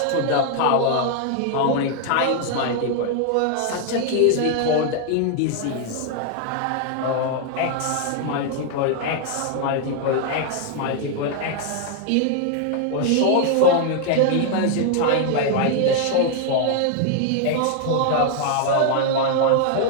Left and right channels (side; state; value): both; different; correlation 0.00